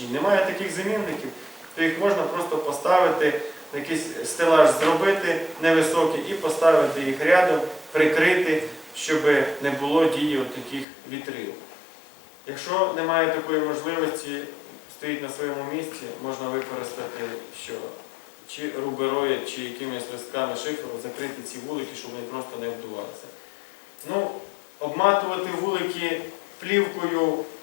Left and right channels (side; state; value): right; drops out; at 10.9 s